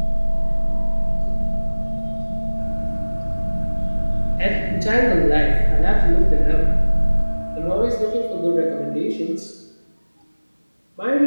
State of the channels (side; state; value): both; inverted; correlation -1.00